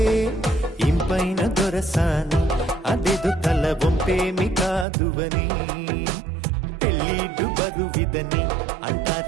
ఇంపైన దొరసాని అదెదు తల బొంపేమి కాదువని పెళ్ళిడు బరువిదని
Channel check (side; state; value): left; drops out; at 4.9 s